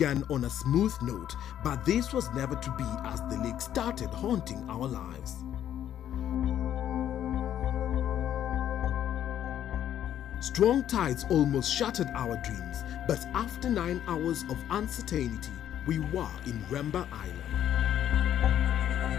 on a smooth note, but this was never to be as the lake started haunting our lives. Strong tides almost shattered our dreams, but after 9 hours of uncertainty, we were in Remba Island.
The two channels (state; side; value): quieter; right; 10.7 dB